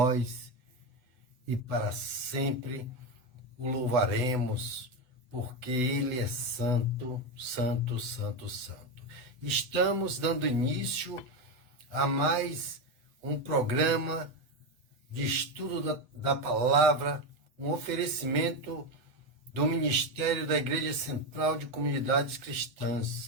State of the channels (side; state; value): left; late; 8.1 ms